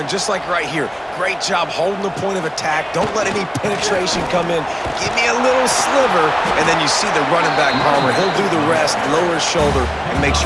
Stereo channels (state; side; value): identical; both; correlation 1.00